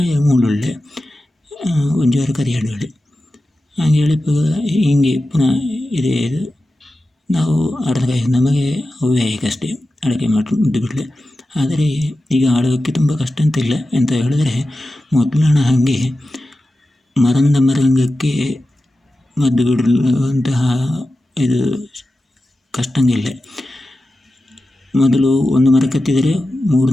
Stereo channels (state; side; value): normal; both; correlation 0.93